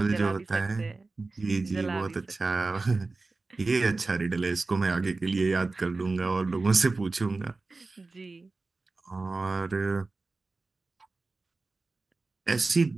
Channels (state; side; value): quieter; left; 3.6 dB